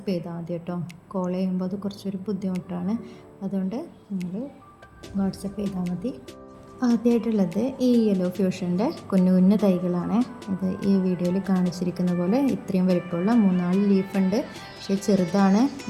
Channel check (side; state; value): both; identical; correlation 1.00